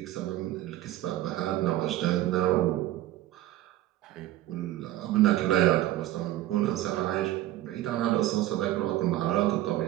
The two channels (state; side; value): quieter; left; 14.6 dB